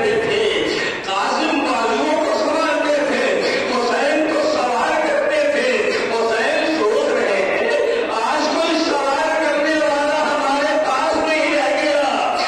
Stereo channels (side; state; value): both; identical; correlation 1.00